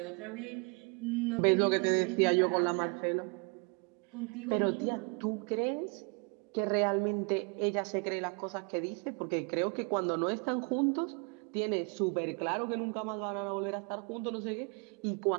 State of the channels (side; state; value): left; quieter; 34.8 dB